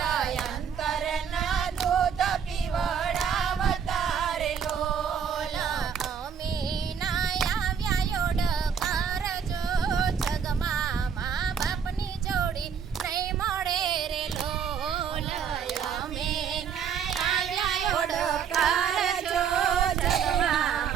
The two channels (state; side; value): quieter; left; 7.4 dB